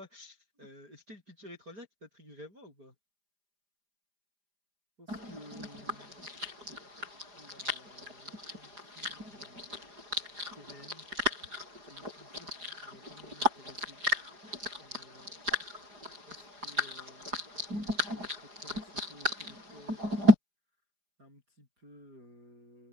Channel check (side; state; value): left; late; 4.9 ms